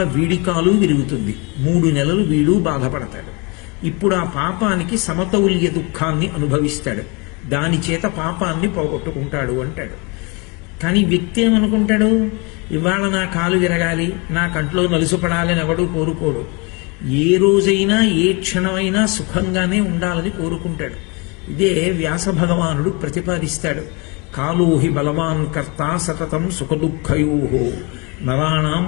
వీడి కాలు విరుగుతుంది, 3 నెలలు వీడు బాధపడతాడు. ఇప్పుడు ఆ పాపానికి సమతౌల్య దుఃఖాన్ని అనుభవిస్తాడు, దాని చేత పాపాన్ని పోగొట్టుకుంటాడు అంటాడు. కానీ వ్యక్తి ఏమనుకుంటాడు? ఇవాళ నా కాలు విరగాలి, నా కంట్లో నలుసుపడాలని ఎవడూ కోరుకోడు. ఏ రోజైనా, ఏ క్షణమైనా సుఖంగానే ఉండాలని కోరుకుంటాడు. ఇదే వ్యాస భగవానుడు ప్రతిపాదిస్తాడు. కాలోహి బలవాన్ కర్త సతతం సుఖదుఃఖయో నరాణం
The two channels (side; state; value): right; quieter; 29.8 dB